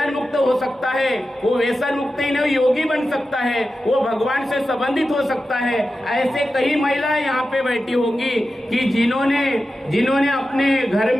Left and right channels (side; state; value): both; normal; correlation 0.92